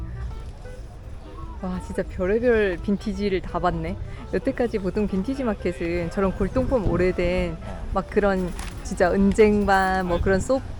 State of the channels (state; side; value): identical; both; correlation 1.00